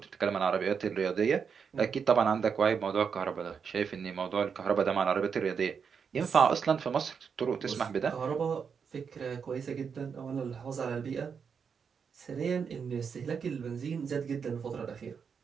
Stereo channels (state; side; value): quieter; left; 6.4 dB